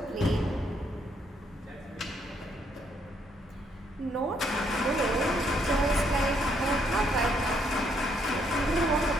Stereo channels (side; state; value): both; normal; correlation 0.72